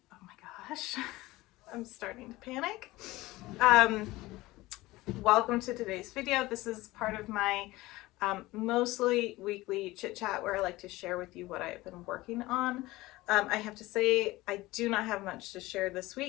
oh my gosh, I'm starting to panic. Welcome to today's video. This is part of my mostly weekly chit chat where I like to share with you what I've been working on. I have to say I do not have much to share this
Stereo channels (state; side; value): quieter; right; 19.2 dB